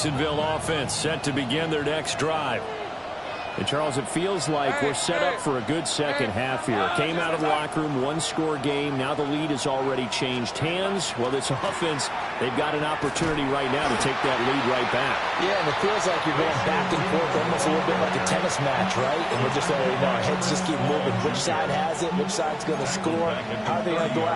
offense set to begin their next drive. And, Charles, it feels like we're set up for a good second half here. Came out of the locker room, one-score game. Now the lead has already changed hands. Well, this offense, they've got an opportunity right now to take that lead right back. Yeah, and it feels like you're going back and forth almost a little bit like a tennis match, right? And we're just already know our heads just keep moving. Which side has it? Which side's going to score? How are they going to go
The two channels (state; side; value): identical; both; correlation 1.00